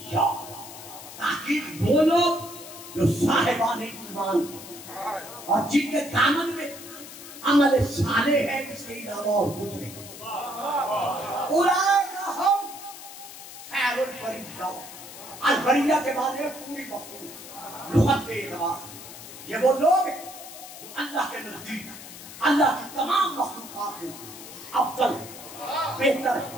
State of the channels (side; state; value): left; noise; hiss, 14 dB below the sound